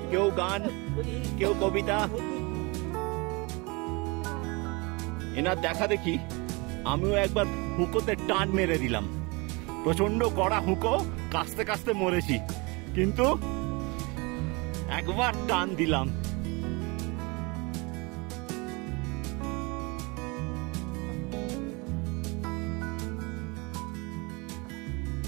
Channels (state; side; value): quieter; left; 27.5 dB